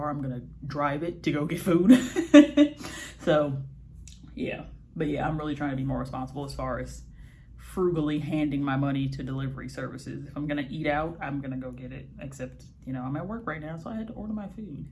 I'm gonna drive it to go get food. So yeah, but yeah, I'm really trying to be more responsible as far as frugally handing my money to delivery services. If I'm gonna eat out, I'm gonna go get it, except, you know, I'm at work right now, so I had to order my food.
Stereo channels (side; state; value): both; identical; correlation 1.00